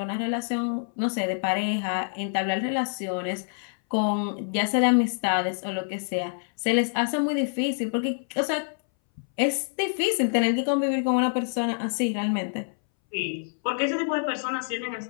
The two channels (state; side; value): silent; right; 61 dB below the other